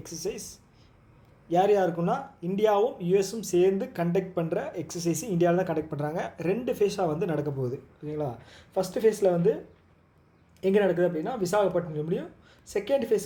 exercise. யார் யாருக்குன்னா இந்தியாவும் யூஎஸும் சேர்ந்து கண்டக்ட் பண்ணுற எக்ஸசைஸ் இந்தியாவில் தான் கண்டக்ட் பண்ணுறாங்க. 2 ஃபேஸாக வந்து நடக்க போகுது, ஓகேங்களா. ஃபஸ்ட்டு ஃபேஸில் வந்து எங்கே நடக்குது அப்படின்னா விசாகப்பட்டினம். செகண்ட் ஃபேஸ்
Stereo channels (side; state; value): both; identical; correlation 1.00